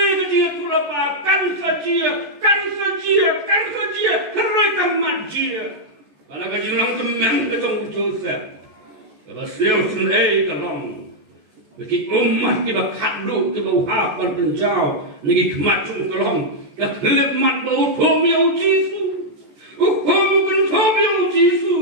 kecil tulapa kan saja herai kamat dia pada kecil lang temen kecong Joseph kalau siau senai kalong bagi umat kita kadu kita hafal penjau negi kemacung kalong kekelip mat bau tomiau Jisu kan tomiau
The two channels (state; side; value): late; left; 14 ms